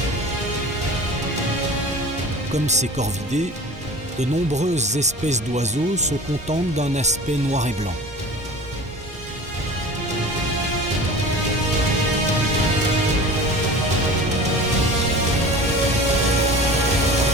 Comme ces corvidés, de nombreuses espèces d'oiseaux se contentent d'un aspect noir et blanc.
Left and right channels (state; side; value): normal; both; correlation 0.38